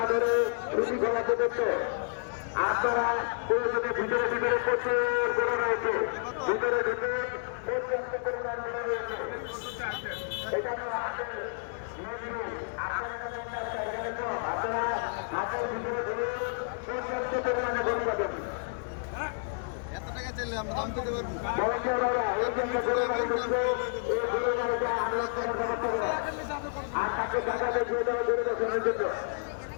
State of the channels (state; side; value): silent; right; digital silence